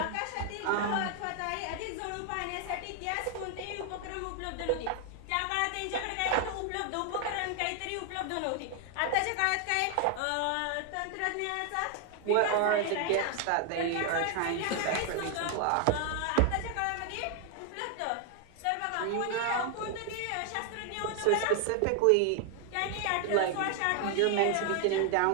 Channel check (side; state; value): both; different; correlation 0.00